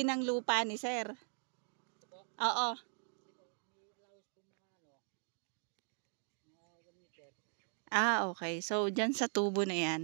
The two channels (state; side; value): silent; left; 51 dB below the other